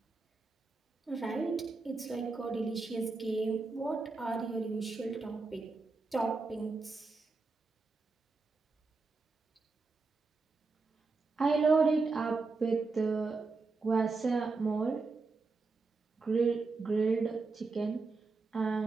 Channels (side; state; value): left; quieter; 4.0 dB